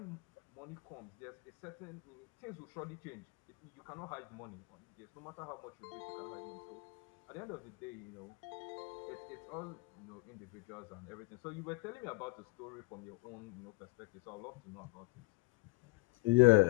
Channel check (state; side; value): quieter; right; 23.4 dB